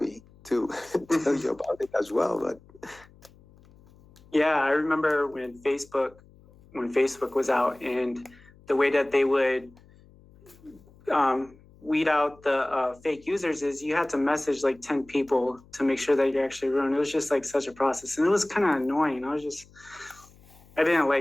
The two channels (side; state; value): left; noise; hum, 26 dB below the sound